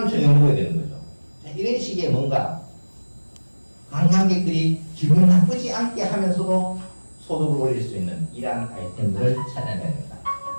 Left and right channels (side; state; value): both; inverted; correlation -1.00